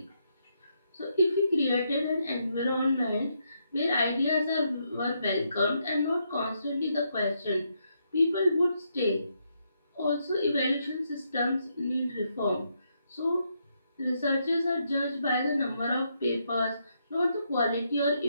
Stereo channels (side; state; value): both; inverted; correlation -0.78